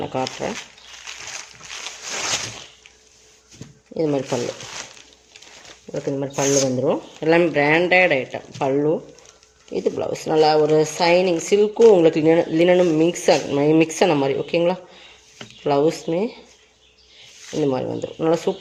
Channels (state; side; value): identical; both; correlation 1.00